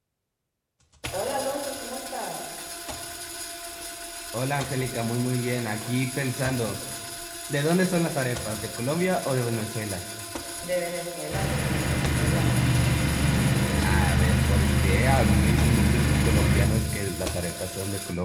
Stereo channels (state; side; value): identical; both; correlation 1.00